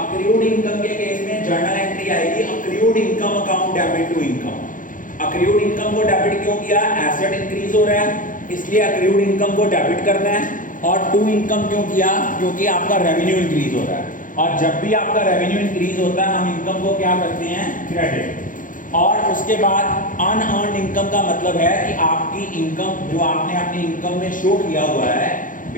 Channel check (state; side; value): late; right; 0.39 ms